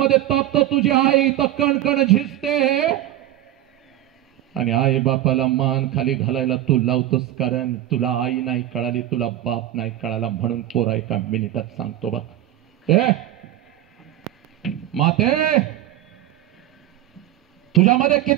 तापतो, तुझी आई तर कणकण झिजते आणि आई बापाला मान खाली घालायला तू लावतोस. कारण तुला आई नाही कळाली, तुला बाप नाही कळाला. म्हणून पोरा एका मिनिटात सांगतो बघ, माते, तुझ्यामध्ये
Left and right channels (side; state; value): left; quieter; 13.2 dB